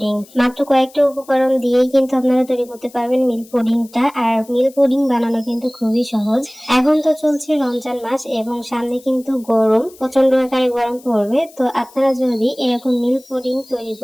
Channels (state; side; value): noise; left; hiss, 24 dB below the sound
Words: মাত্র কয়েকটা উপকরণ দিয়েই কিন্তু আপনারা তৈরি করতে পারবেন মিল্ক পুডিংটা। আর মিল্ক পুডিং বানানো কিন্তু খুবই সহজ। এখন তো চলছে রমজান মাস এবং সামনে কিন্তু গরম, প্রচন্ড আকারে গরম পড়বে। তো আপনারা যদি এরকম মিল্ক পুডিং তৈরি